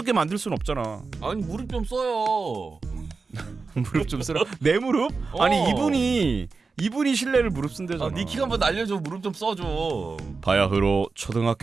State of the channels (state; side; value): quieter; left; 4.4 dB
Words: 만들 순 없잖아. 아니 무릎 좀 써요. 무릎 좀 쓰라. 내 무릎? 아니 이분이 신뢰를 무릅쓴대잖아. 네 키 한번 날려줘. 무릎 좀 써줘. 바야흐로